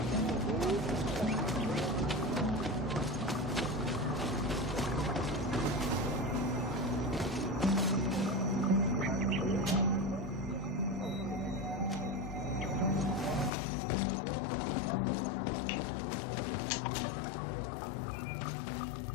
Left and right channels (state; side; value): drops out; right; at 13.5 s